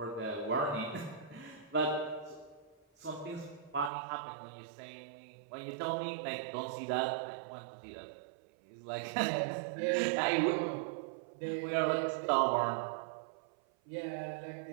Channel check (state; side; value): drops out; left; at 3.9 s